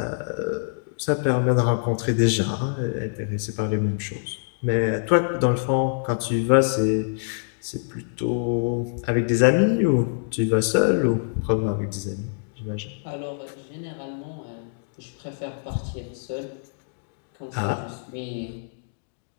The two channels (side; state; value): right; silent; digital silence